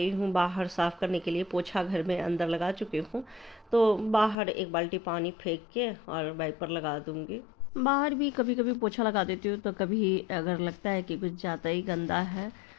हूँ बाहर साफ़ करने के लिए। पोछा घर में अंदर लगा चुकी हूँ, तो बाहर एक बाल्टी पानी फेंक के और वाइपर लगा दूँगी। बाहर भी कभी कभी पोछा लगा देती हूँ, तो कभी अगर लगता है कि कुछ ज़्यादा ही गंदा है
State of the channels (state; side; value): drops out; right; at 4.4 s